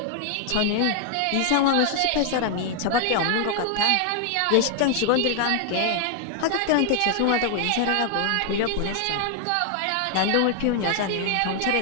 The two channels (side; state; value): both; different; correlation 0.00